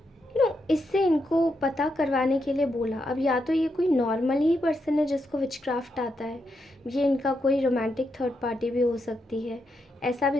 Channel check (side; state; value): both; normal; correlation 0.82